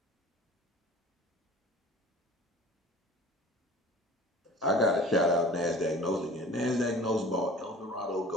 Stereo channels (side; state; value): both; normal; correlation 0.43